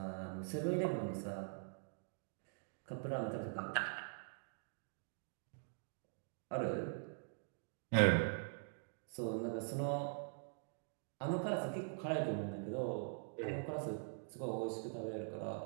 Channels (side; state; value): left; silent; digital silence